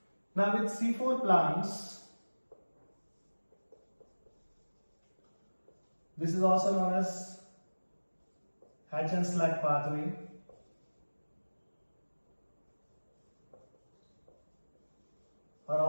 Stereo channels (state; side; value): inverted; both; correlation -1.00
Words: Now with C4 plants, this is also known as Hatch and Slack pathway. Or